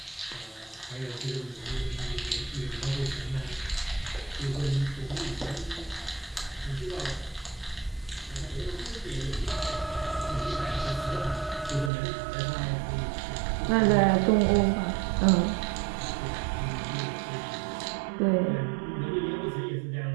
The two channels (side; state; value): left; drops out; at 11.9 s